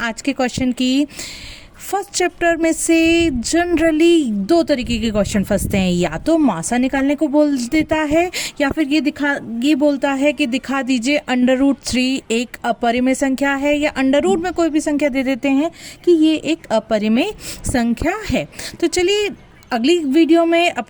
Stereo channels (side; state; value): both; identical; correlation 1.00